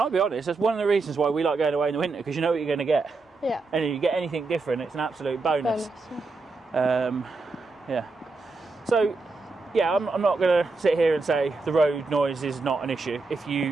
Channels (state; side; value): quieter; left; 3.7 dB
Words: be honest, that's one of the reasons why we like going away in the winter, because you know what you're going to get. Yeah. And if you get anything different, it's an absolute bonus. Yeah. So, yeah, I'm not going to sit here and say the road noise is not an issue. If